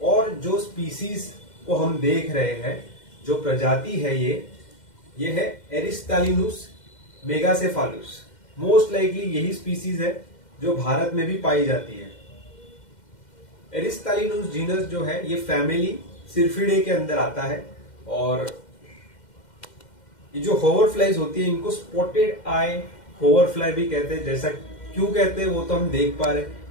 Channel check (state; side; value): late; right; 2.1 ms